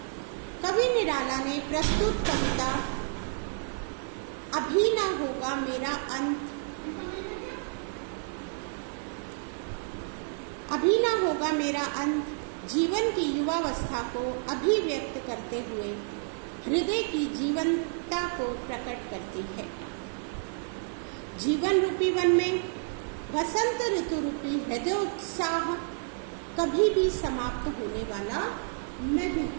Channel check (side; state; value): left; silent; digital silence